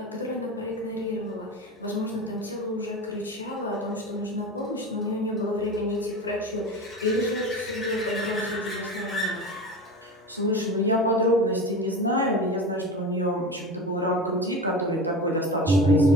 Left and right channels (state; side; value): normal; both; correlation 0.29